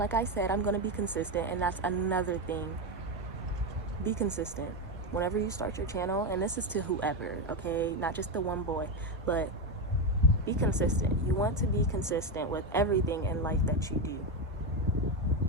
I said, I'm gonna be consistent, and that's another thing. Be consistent whenever you start your channel, and this is to whoever, okay? Not just the one boy, but be consistent. You want to be consistent with everything in life that you do.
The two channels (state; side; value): normal; both; correlation 0.11